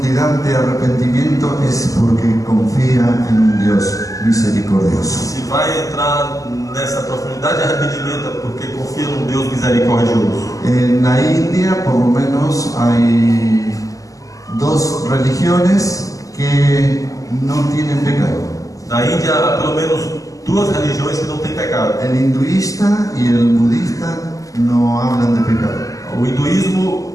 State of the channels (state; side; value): late; right; 0.17 ms